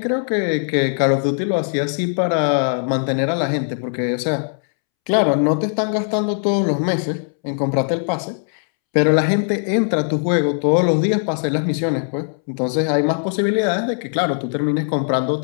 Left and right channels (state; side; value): silent; right; 66 dB below the other